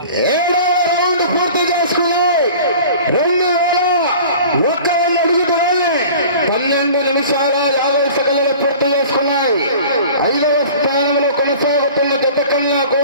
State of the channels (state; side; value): inverted; both; correlation -0.43